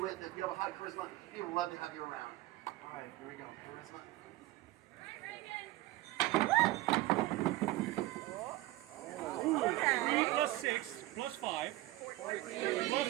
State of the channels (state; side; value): quieter; left; 17.4 dB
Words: If you have a high charisma, people love to have you around. All right, here we go. Charisma. 3 plus 6 plus 5